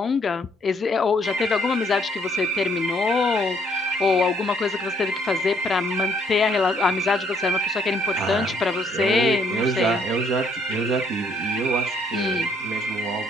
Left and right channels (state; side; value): normal; both; correlation 0.67